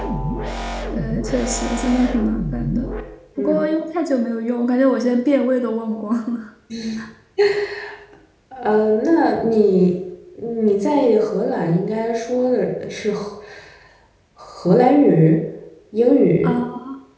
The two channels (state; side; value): identical; both; correlation 1.00